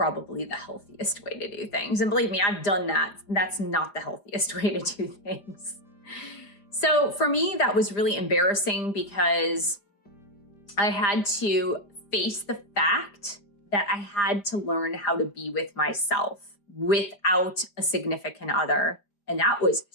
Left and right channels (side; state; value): right; late; 5.0 ms